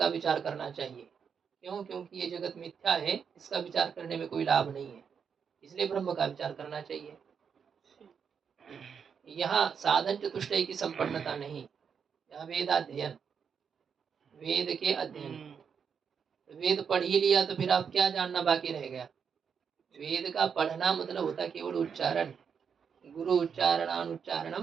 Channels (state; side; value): quieter; left; 6.8 dB